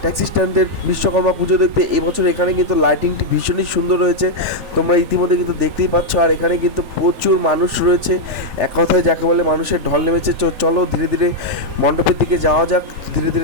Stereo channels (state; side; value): late; left; 3.4 ms